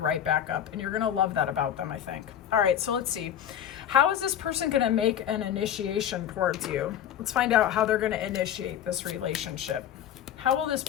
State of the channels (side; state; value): right; quieter; 10.0 dB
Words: right back up, and you're going to love that about them, I think. All right, so let's see. How is this person going to make an initiation towards you? Let's find out how they're going to initiate this relationship. How will this